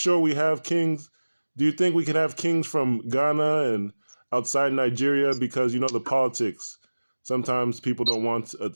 we have kings. Do you think we can have kings from Ghana and outside Nigeria? Because the politics. Sometimes people don't want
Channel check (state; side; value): inverted; both; correlation -1.00